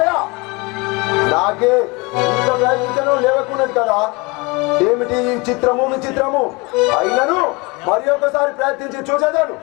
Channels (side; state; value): right; quieter; 26.4 dB